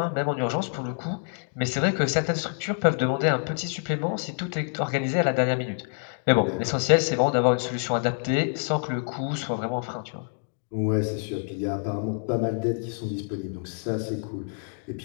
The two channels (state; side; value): silent; right; 60 dB below the other